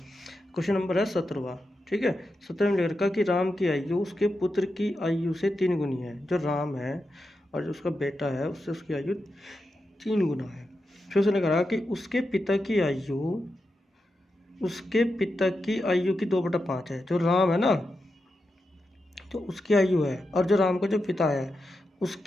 नंबर है 17वां। ठीक है, 17 में लिखा कि राम की आयु उसके पुत्र की आयु से 3 गुनी है। जो राम है और जो उसका बेटा है उससे उसकी आयु 3 गुना है। फिर उसने कहा कि उसके पिता की आयु की 2/5 है। जो राम है ना, तो उसकी आयु है, और जो राम का जो पिता है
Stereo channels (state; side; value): normal; both; correlation 0.88